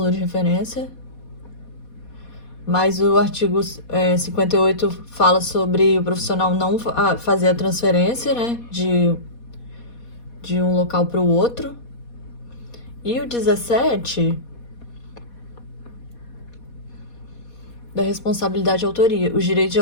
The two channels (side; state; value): right; late; 4.2 ms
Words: de referência. Mas o artigo 58 fala sobre o profissional não fazer a transferência, né, de um local para o outro. E o 17 da responsabilidade de autoria. Os direitos de